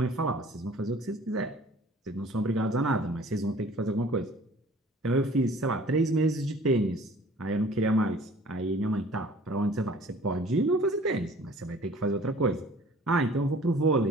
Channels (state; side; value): normal; both; correlation 0.50